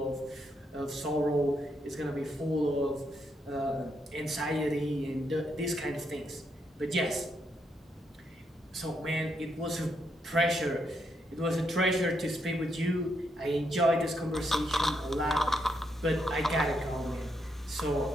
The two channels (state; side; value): normal; both; correlation 0.79